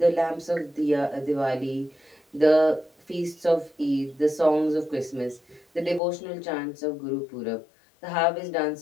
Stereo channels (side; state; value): right; drops out; at 6.0 s